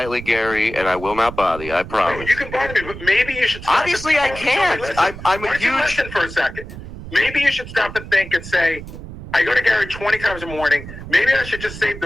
Gary, and I will not bother you. I promise. You can bother me, but maybe you should stop. Obviously, I can't. Listen, I'm a why don't you huge... listen for a second. Maybe you should stop and think and say, I go to Gary 20 times a morning. Maybe I should just save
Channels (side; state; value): right; noise; rumble, 12 dB below the sound